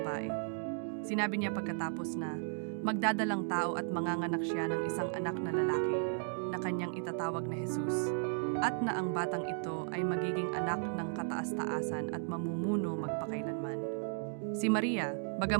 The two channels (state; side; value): silent; left; 54 dB below the other